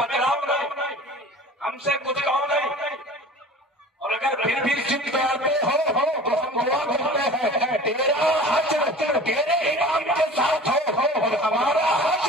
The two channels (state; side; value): normal; both; correlation 0.41